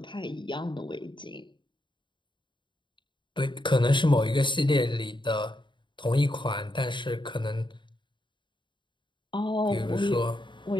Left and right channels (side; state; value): right; late; 0.23 ms